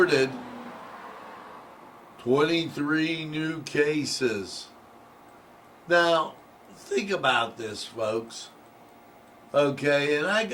23 new cases. Now, think about this, folks. Okay, and I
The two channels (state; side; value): identical; both; correlation 1.00